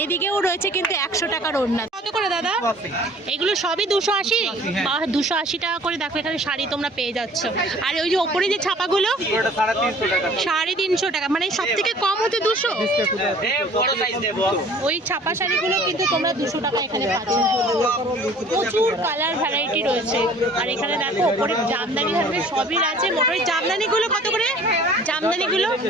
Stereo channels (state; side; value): normal; both; correlation 0.50